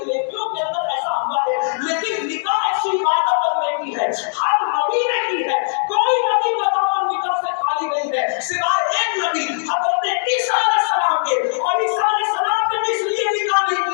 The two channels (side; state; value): right; silent; digital silence